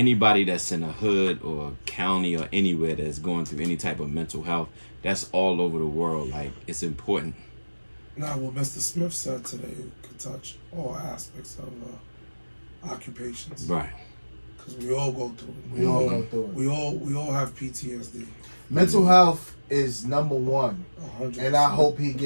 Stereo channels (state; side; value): inverted; both; correlation -1.00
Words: that's in a hood or a county or anywhere that's going through any type of mental health. That's all over the world. Like, it's important. Now, what Mr. Smith said today could touch all aspects of occupations. Right. Because we all go through it. We all go through it. We all have PTSD. Mental health is number one. 100%. And I hope he